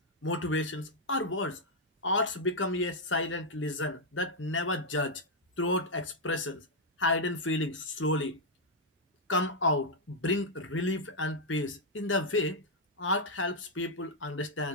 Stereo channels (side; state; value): both; normal; correlation -0.03